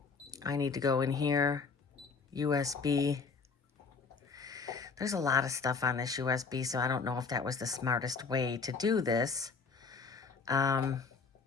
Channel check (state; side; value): quieter; right; 4.9 dB